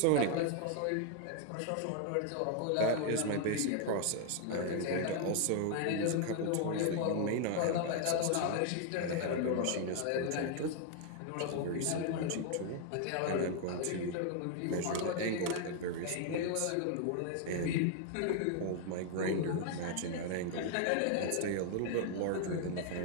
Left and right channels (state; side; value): different; both; correlation 0.00